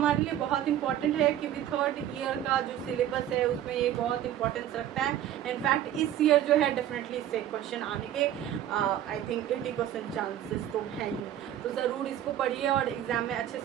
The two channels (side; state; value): left; quieter; 11.5 dB